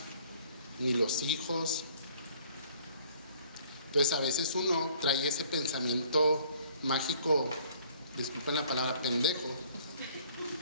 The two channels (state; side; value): inverted; both; correlation -0.57